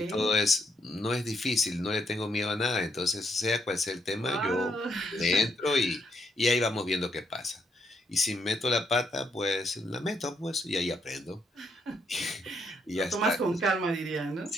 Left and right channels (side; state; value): both; normal; correlation 0.75